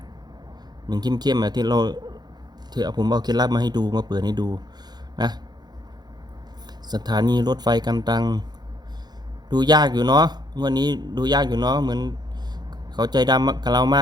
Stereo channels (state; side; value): late; left; 0.20 ms